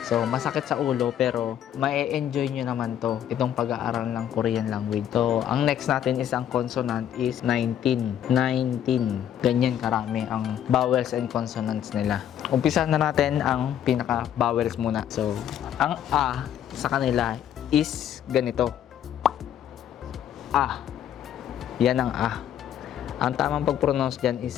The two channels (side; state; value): right; quieter; 10.2 dB